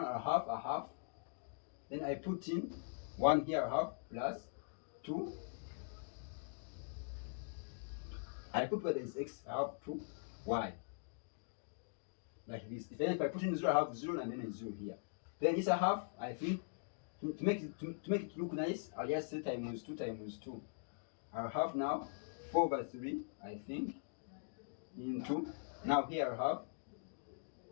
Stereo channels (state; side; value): silent; right; digital silence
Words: I'll have a half. Then I put in 1 here, I have plus 2. I put where there is x, I have 2y. Like this. Then if I put in 0, I have 0 and then a 0 here. Then this I have, I think, to make it look nice, I'll just say times 2 times 2. I'll have now 4 over 3, I think, into, now here I have,